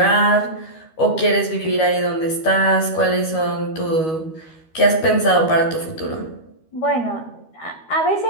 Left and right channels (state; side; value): late; right; 13 ms